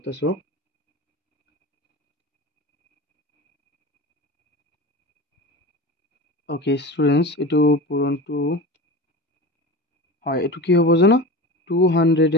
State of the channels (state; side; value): normal; both; correlation 0.30